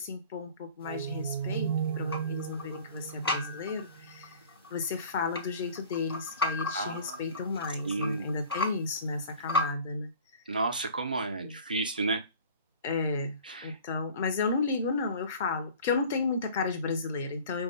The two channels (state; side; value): inverted; both; correlation -0.45